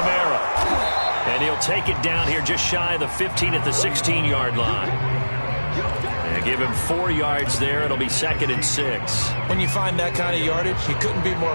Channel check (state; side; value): inverted; both; correlation -1.00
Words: And he'll take it down here just shy of the 15 at the 16-yard line. And give him 4 yards there. It'll be 2nd and 6. When you find that kind of yardage, you couldn't be